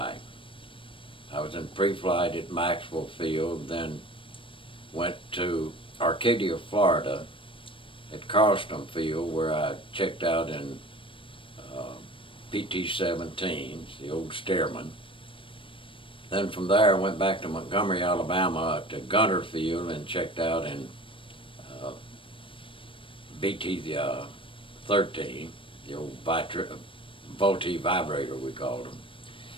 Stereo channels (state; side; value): late; right; 0.25 ms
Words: I was in pre-flight at Maxwell Field, then went to Arcadia, Florida at Carlston Field, where I checked out in PT-17s, the old Stearman. Then from there I went back to Montgomery, Alabama to Gunter Field and checked out in BT-13, the old Volti vibrator we called them.